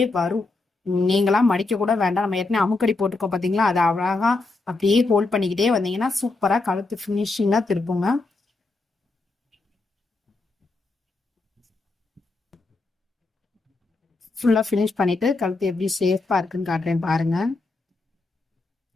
வரும். நீங்களா மடிக்க கூட வேண்டாம். நம்ம ஏற்கனவே அமுக்கடி போட்டுக்கோ பாத்தீங்களா, அதை அழகா அப்படியே ஹோல்ட் பண்ணிக்கிட்டே வந்தீங்கன்னா சூப்பரா கழுத்து பினிஷிங்கா திருப்புங்க. ஃபுல்லா ஃபினிஷ் பண்ணிட்டு கழுத்து எப்படி சேஃபா இருக்குன்னு காட்டுறேன் பாருங்க.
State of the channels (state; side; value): quieter; right; 3.4 dB